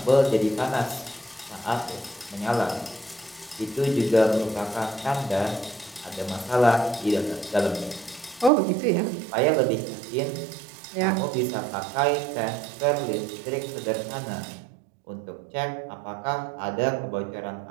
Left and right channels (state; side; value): drops out; left; at 8.5 s